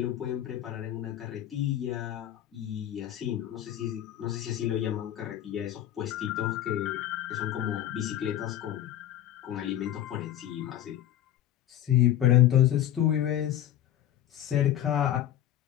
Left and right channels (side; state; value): right; quieter; 11.9 dB